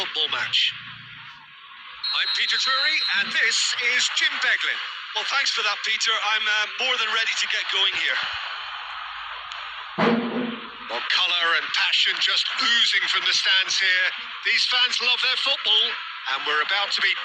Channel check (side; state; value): both; identical; correlation 1.00